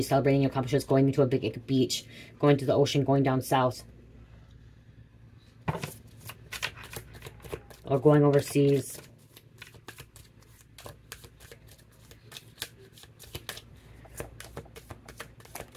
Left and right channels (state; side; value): identical; both; correlation 1.00